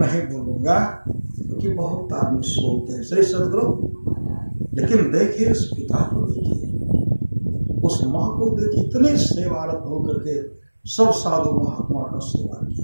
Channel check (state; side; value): inverted; both; correlation -1.00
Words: बोलूंगा क्योंकि बहुत आदमी सोते हैं। श्री सतगुरु, लेकिन देखिए उस पिता को, देखिए उस माँ को, देखिए इतने सेवारत होकर के सब साधु महात्मा का सेवा